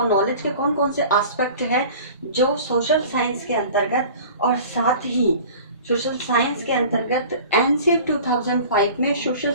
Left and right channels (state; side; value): inverted; both; correlation -0.42